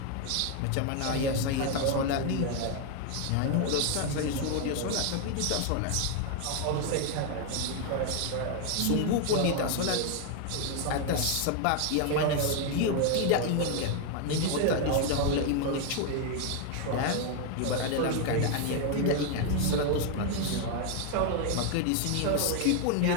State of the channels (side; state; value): both; different; correlation 0.00